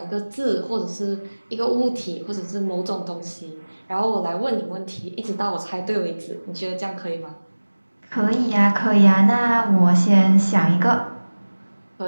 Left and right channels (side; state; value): both; inverted; correlation -1.00